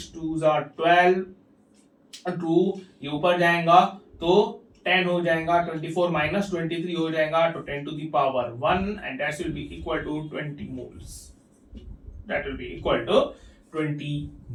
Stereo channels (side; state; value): both; identical; correlation 1.00